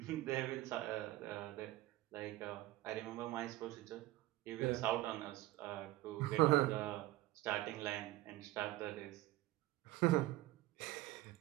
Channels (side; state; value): left; quieter; 17.4 dB